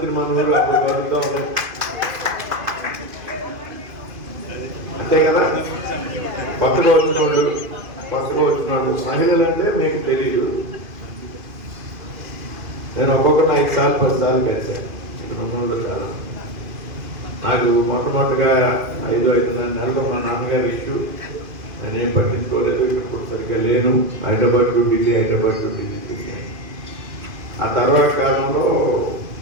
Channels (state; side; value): late; left; 2.5 ms